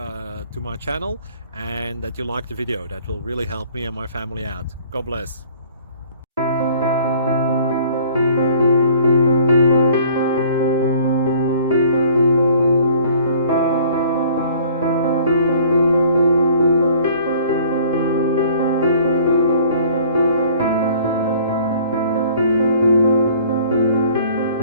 my channel and that you like the video. That will really help me and my family out. God bless.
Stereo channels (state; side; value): inverted; both; correlation -0.54